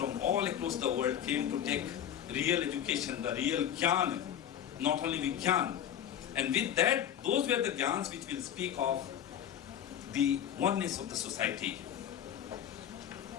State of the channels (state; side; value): quieter; right; 9.9 dB